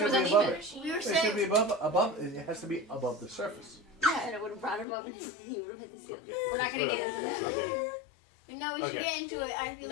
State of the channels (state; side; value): drops out; right; at 4.9 s